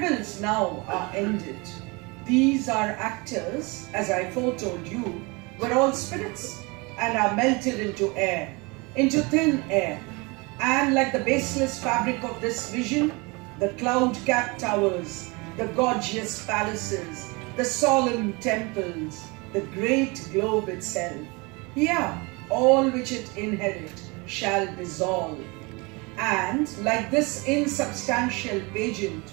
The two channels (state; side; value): quieter; left; 27.1 dB